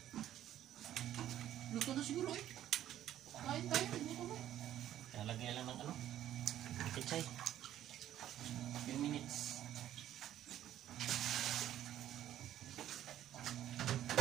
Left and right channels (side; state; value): left; quieter; 12.0 dB